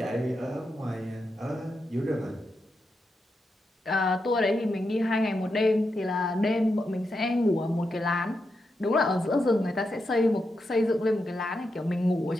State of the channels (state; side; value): normal; both; correlation 0.86